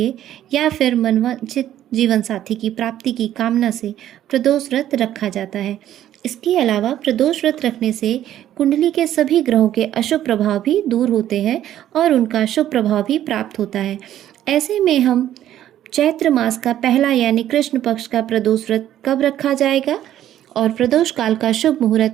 या फिर मनवांछित जीवन साथी की प्राप्ति की कामना से प्रदोष व्रत रखा जाता है। इसके अलावा प्रदोष व्रत रखने से कुंडली के सभी ग्रहों के अशुभ प्रभाव भी दूर होते हैं और उनका शुभ प्रभाव भी प्राप्त होता है। ऐसे में हम चैत्र मास का पहला यानी कृष्ण पक्ष का प्रदोष व्रत कब रखा जाएगा और प्रदोष काल का शुभ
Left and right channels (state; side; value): quieter; left; 11.9 dB